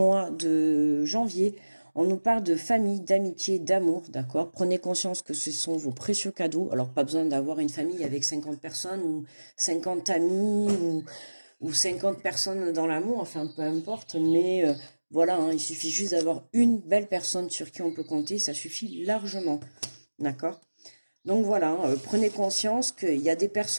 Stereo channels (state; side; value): inverted; both; correlation -1.00